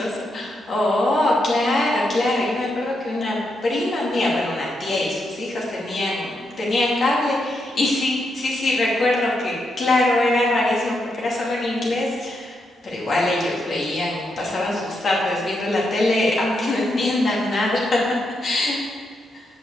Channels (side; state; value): both; normal; correlation 0.82